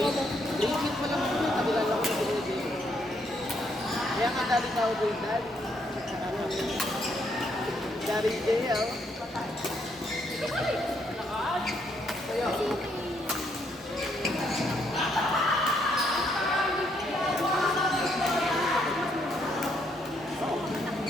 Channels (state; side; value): normal; both; correlation 0.73